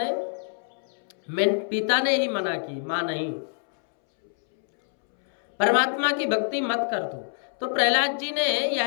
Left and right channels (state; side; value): silent; right; 61 dB below the other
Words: पिता ने ही मना की, मां नहीं, परमात्मा की भक्ति मत कर तू। तो प्रहलाद जी ने